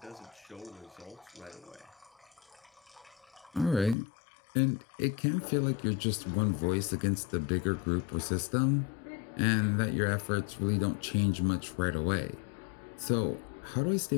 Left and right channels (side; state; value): right; drops out; at 4.0 s